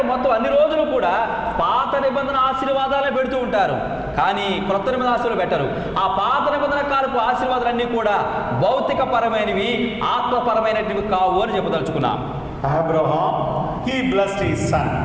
మొత్తం అన్ని రోజులు కూడా పాత నిబంధన ఆశీర్వాదాలే పెడుతూ ఉంటారు, కానీ క్రొత్త నిబంధన ఆశీర్వాదాలు పెట్టరు. ఆ పాత నిబంధన కాలపు ఆశీర్వాదాలన్నీ కూడా భౌతిక పరమైనవి, ఆత్మపరమైనవి కావు అని చెప్పదలుచుకున్నాం. Abraham, he blessed his son.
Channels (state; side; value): identical; both; correlation 1.00